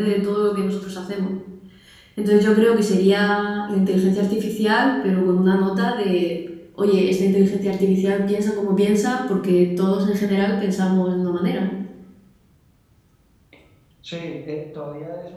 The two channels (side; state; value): both; identical; correlation 1.00